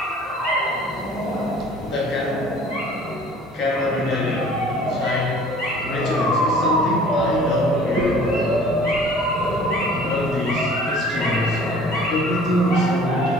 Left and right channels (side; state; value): both; normal; correlation 0.49